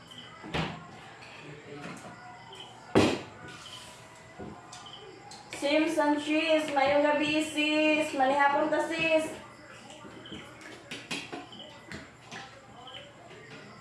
Simpson cheese, mayong gabi sis. Manihapon ta sis.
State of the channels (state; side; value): identical; both; correlation 1.00